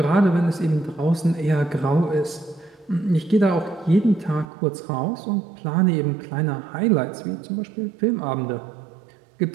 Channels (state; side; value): drops out; left; at 4.5 s